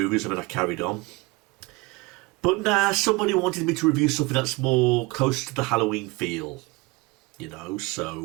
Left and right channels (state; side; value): quieter; left; 24.4 dB